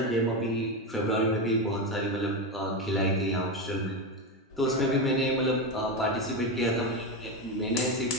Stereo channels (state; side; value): normal; both; correlation 0.14